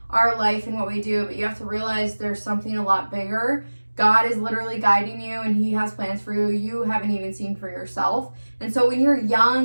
our life and what we do, but you have to realize there's something a lot bigger. God is literally guiding you, and he has plans for you you haven't even seen for yourself. And so when you're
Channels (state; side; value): inverted; both; correlation -1.00